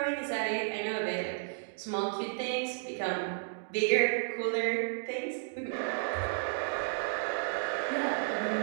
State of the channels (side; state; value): left; silent; digital silence